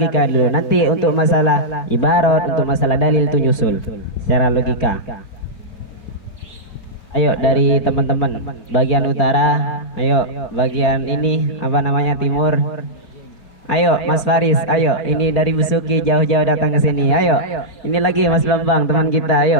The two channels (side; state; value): right; late; 4.5 ms